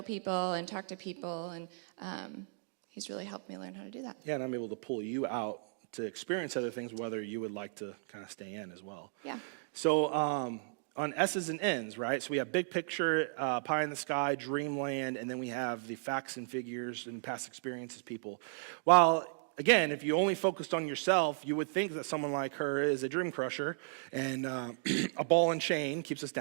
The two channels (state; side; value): silent; left; digital silence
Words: people and talk to people. And he's really helped me learn how to do that. Yeah, and I'm able to pull you out to experience other things, whether you would like to kind of stay in as well. Yeah. So on S's and N's, right? So we have big picture, pie in the sky, dreamland, and then we have the facts and figures and past experiences people. While, again, if you only focused on yourself, you would think that someone like her is a dream crusher and a ball and chain keeps us